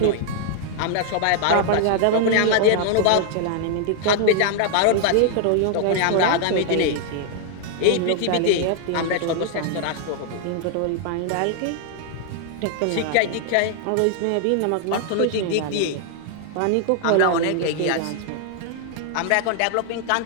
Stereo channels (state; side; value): different; both; correlation 0.00